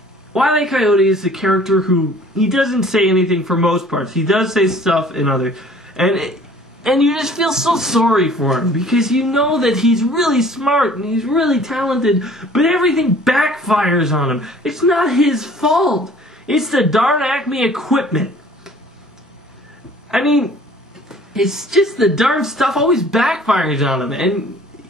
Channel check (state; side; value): normal; both; correlation 0.52